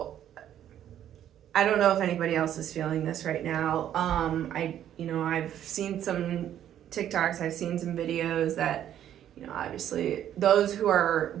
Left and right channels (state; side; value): quieter; left; 10.8 dB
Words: I don't know if anybody else is feeling this right now. I've seen some TikToks, I've seen some videos that, you know, obviously those who are